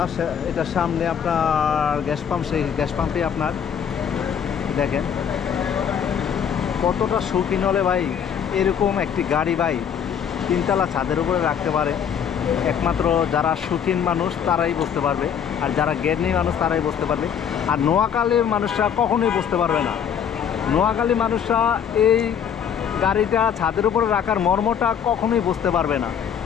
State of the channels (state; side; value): quieter; right; 8.1 dB